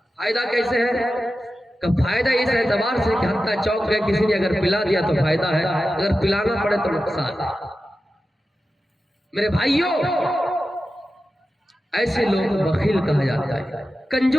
فائدہ کیسے ہے؟ کہ فائدہ اس اعتبار سے کہ حتیٰ چوک گئے کسی نے اگر پلا دیا تو فائدہ ہے، اگر پلانا پڑے تو نقصان ہے۔ میرے بھائیوں ایسے لوگ بخیل کہا جاتا ہے،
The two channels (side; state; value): both; normal; correlation 0.92